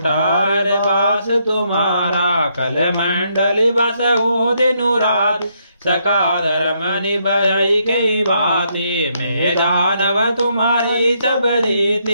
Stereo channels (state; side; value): inverted; both; correlation -0.75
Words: बास तुम्हारा कल मंडली बस हो दिनु रात सकादर मनि भय कई बाती मैं दानव तुम्हारी सब